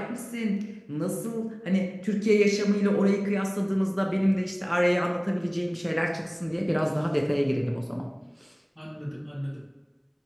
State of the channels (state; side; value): identical; both; correlation 1.00